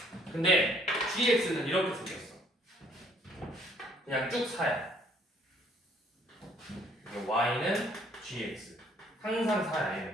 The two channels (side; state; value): both; normal; correlation 0.63